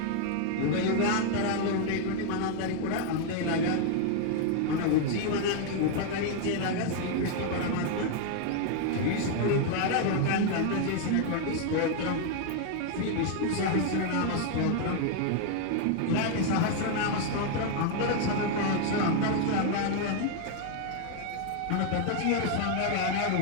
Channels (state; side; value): different; both; correlation 0.00